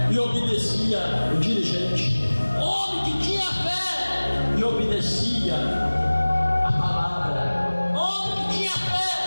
e obedecia o dirigente. Homem que tinha fé e obedecia a palavra. Homem que tinha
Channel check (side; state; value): both; inverted; correlation -1.00